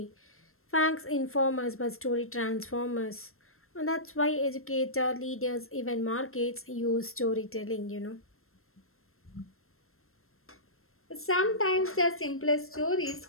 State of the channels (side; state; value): right; late; 0.62 ms